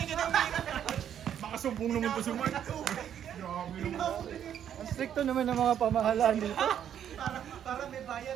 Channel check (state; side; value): quieter; left; 9.6 dB